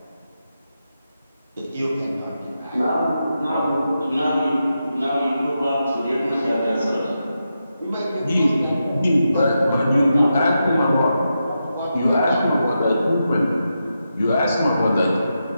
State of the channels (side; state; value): both; inverted; correlation -0.87